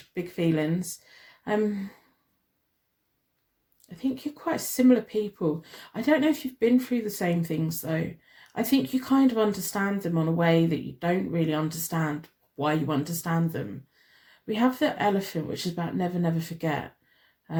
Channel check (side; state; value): both; identical; correlation 1.00